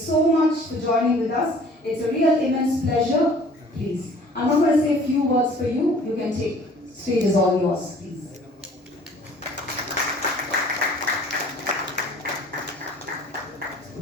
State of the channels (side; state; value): both; normal; correlation 0.51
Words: much for joining with us. It's a real immense pleasure. Please. I'm not going to say a few words for you. You can take. Stage is all yours, please.